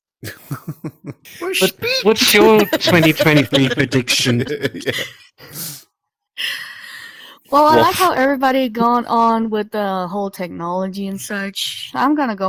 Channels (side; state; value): both; identical; correlation 1.00